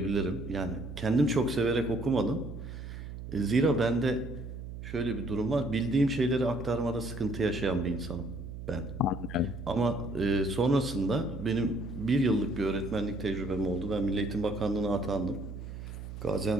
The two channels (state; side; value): noise; right; hum, 10 dB below the sound